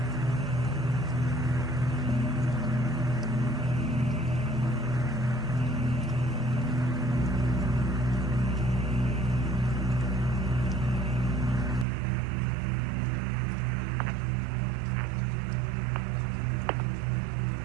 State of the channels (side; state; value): left; drops out; at 11.9 s